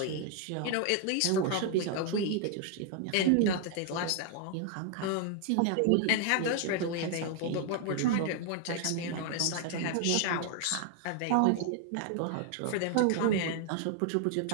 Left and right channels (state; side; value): different; both; correlation 0.00